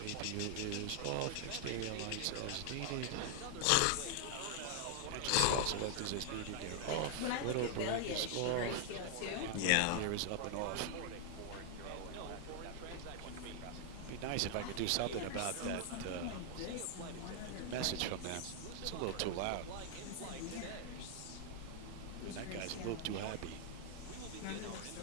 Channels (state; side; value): different; both; correlation -0.01